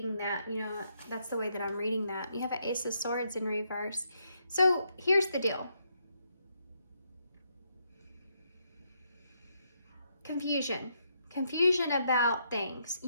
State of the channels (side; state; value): both; inverted; correlation -0.77